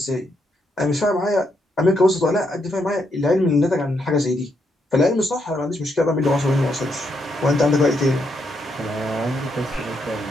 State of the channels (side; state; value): both; normal; correlation 0.78